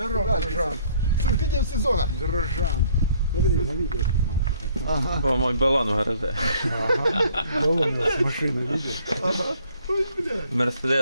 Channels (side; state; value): both; inverted; correlation -0.61